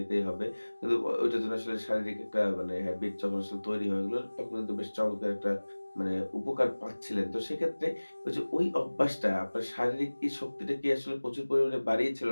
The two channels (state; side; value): inverted; both; correlation -1.00